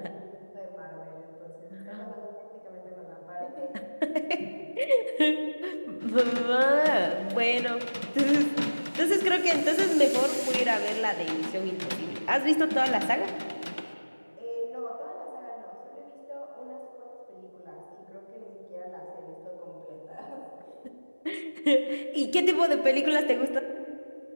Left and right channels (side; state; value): both; inverted; correlation -1.00